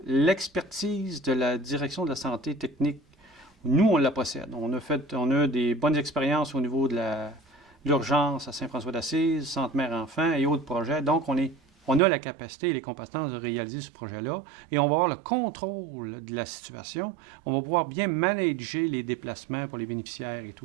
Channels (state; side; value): drops out; left; at 12.0 s